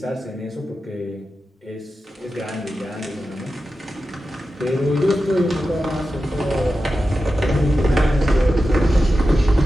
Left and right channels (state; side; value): normal; both; correlation 0.92